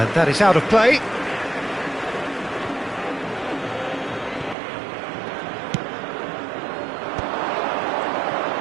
that is out of play.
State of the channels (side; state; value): left; drops out; at 4.5 s